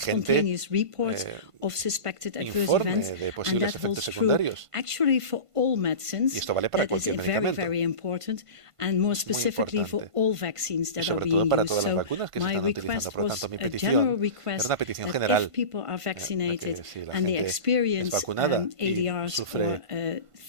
report of suspected adverse events, and that holds true actually for all medicines. That is very, very important, and more specifically for all vaccines that are being used. So my request was a general request that if people are vaccinated and they experience ADRs or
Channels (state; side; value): late; left; 1.5 ms